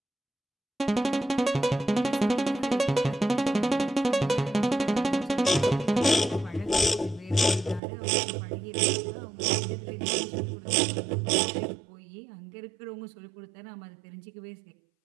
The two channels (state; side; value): drops out; left; at 7.8 s